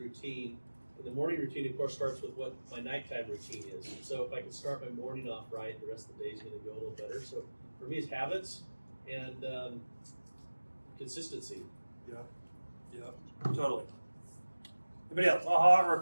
And the morning routine, of course, starts with what my nighttime routine is. So if I can start my morning off right, the rest of the day is going to go a little better. So for me, it's habits and consistency. Yeah, totally. Anybody else? Aha or a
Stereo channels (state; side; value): inverted; both; correlation -1.00